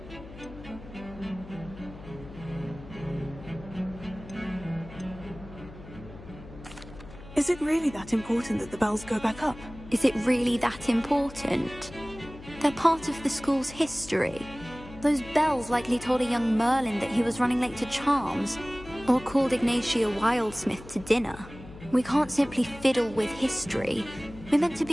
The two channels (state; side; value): noise; left; hum, 16 dB below the sound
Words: Is it really that important that the bells go back up? Is it really that important? They're part of the school's history. Those bells likely told a young Merlin that he was running late to Charms, or called Ignatia Wildsmith to dinner. We can't simply fiddle with history. We're meant to